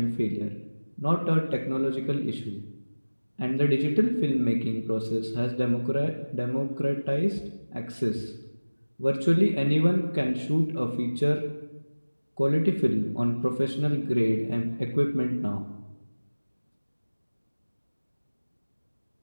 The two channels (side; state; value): both; inverted; correlation -1.00